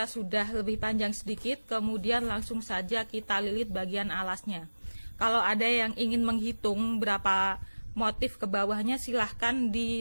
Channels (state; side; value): inverted; both; correlation -1.00